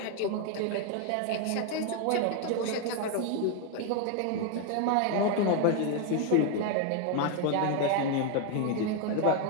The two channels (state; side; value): different; both; correlation 0.01